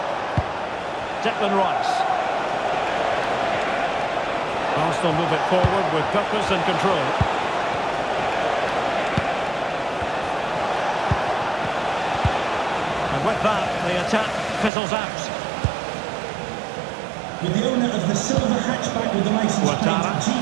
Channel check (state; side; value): drops out; left; at 14.7 s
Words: Declan Rice. Arsenal move it forward with purpose and control. And with that, the attack fizzles out. With the owner of the silver hatchback with the license